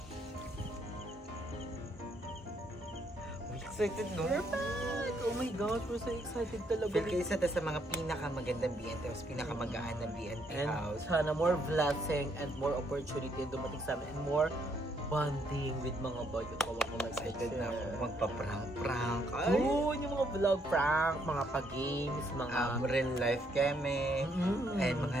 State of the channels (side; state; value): both; normal; correlation 0.71